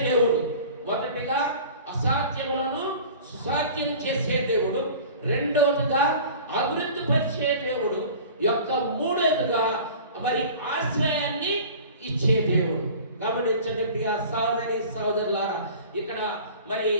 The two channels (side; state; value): both; inverted; correlation -0.42